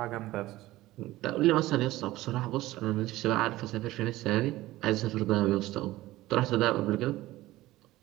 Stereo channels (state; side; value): quieter; left; 17.0 dB